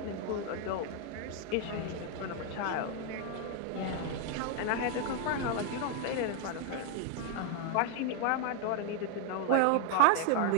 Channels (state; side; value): different; both; correlation 0.01